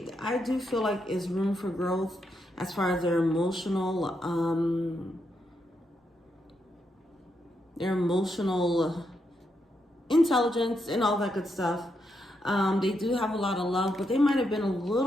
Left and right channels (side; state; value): both; normal; correlation 0.82